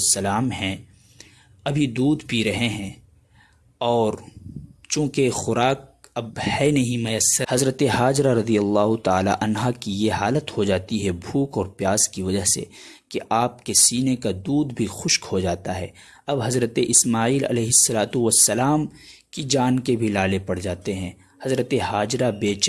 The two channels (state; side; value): identical; both; correlation 1.00